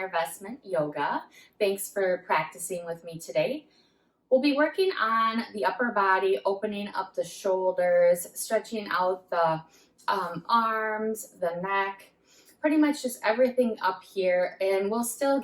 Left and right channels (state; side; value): identical; both; correlation 1.00